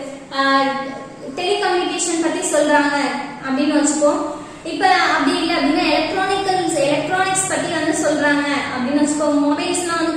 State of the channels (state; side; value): identical; both; correlation 1.00